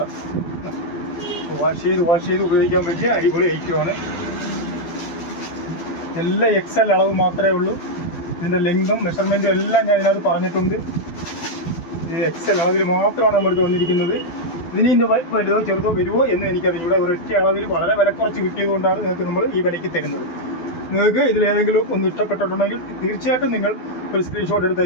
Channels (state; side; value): late; right; 12 ms